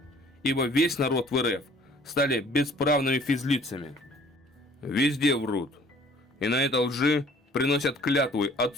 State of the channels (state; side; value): normal; both; correlation 0.55